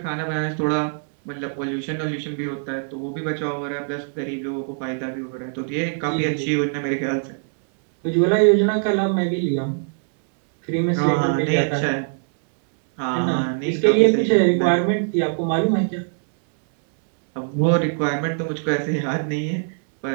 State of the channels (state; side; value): silent; left; digital silence